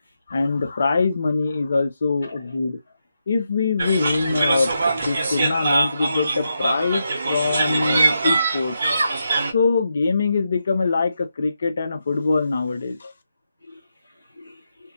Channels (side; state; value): both; inverted; correlation -0.85